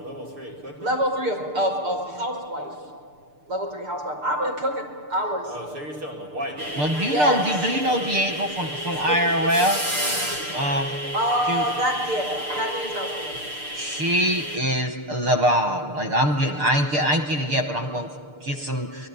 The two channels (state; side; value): late; left; 6.7 ms